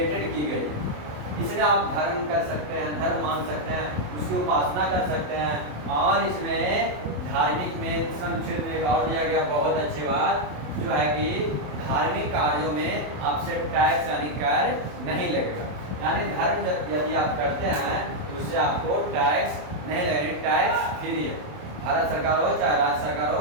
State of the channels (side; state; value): left; late; 27 ms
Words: की गई। इसमें आप धर्म कर सकते हैं, धर्म मान सकते हैं, उसकी उपासना कर सकते हैं। और इसमें धार्मिक में इस अनुच्छेद में एक और दिया गया बहुत अच्छी बात, जो है कि धार्मिक कार्यों में आपसे टैक्स यानी कर नहीं लगेगा। यानी धर्म यदि आप करते हैं तो उससे आपको टैक्स नहीं लगेगा। टैक्स फ्री है। भारत सरकार हो चाहे राज्य सरकार